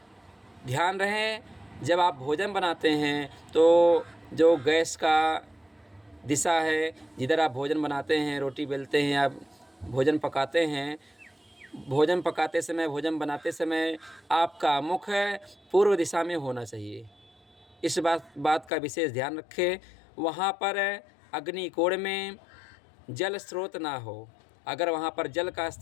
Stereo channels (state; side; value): drops out; right; at 18.7 s